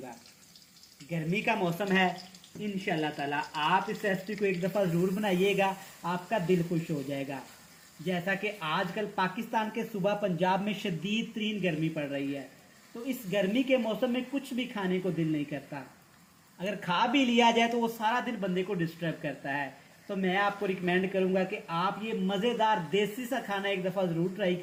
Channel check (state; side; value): identical; both; correlation 1.00